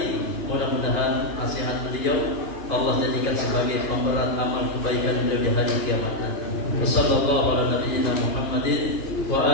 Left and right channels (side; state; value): right; late; 2.9 ms